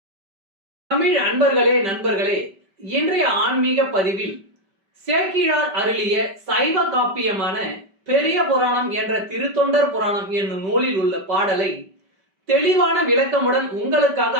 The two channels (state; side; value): late; left; 5.2 ms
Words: தமிழ் அன்பர்களே, நண்பர்களே, இன்றைய ஆன்மீக பதிவில் சேக்கிழார் அருளிய சைவ காப்பியமான பெரிய புராணம் என்ற திருத்தொண்டர் புராணம் என்னும் நூலில் உள்ள பாடலை தெளிவான விளக்கமுடன் உங்களுக்காக